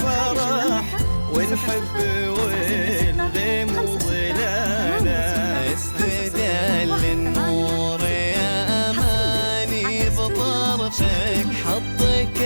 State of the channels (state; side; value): inverted; both; correlation -1.00